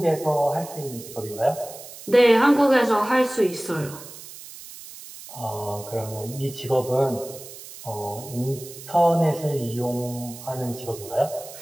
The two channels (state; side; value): noise; right; hiss, 15 dB below the sound